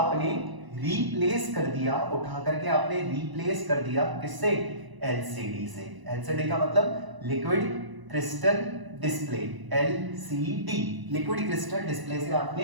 रिप्लेस कर दिया, उठा करके आपने रिप्लेस कर दिया किससे, एलसीडी से। एलसीडी का मतलब liquid crystal display, LCD, liquid crystal display से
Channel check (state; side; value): late; left; 1.0 ms